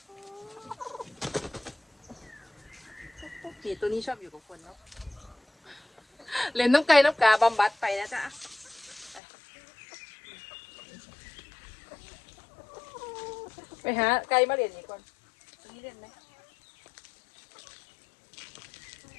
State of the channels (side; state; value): right; drops out; at 9.2 s